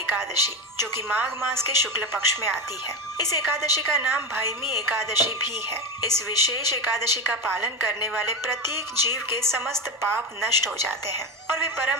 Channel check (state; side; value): normal; both; correlation 0.19